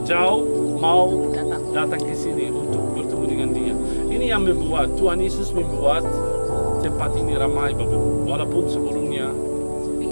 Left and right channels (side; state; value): both; inverted; correlation -1.00